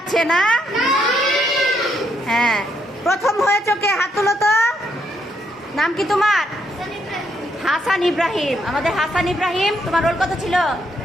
না? হ্যাঁ, প্রথম হয়েছো কে? হাত তুলো তো। নাম কি তোমার? হাসান ইব্রাহিম। আমাদের হাসান ইব্রাহিম। তোমার রোল কত ছিল?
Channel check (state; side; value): normal; both; correlation 0.75